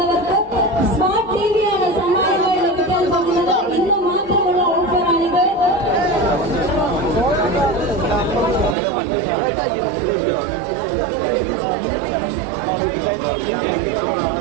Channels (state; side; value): drops out; left; at 8.8 s